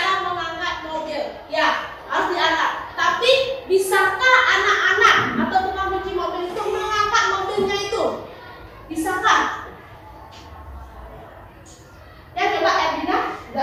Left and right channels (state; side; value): identical; both; correlation 1.00